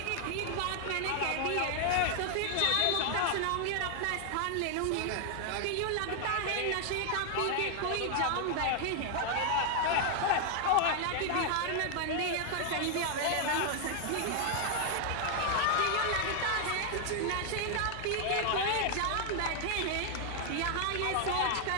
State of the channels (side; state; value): both; different; correlation 0.00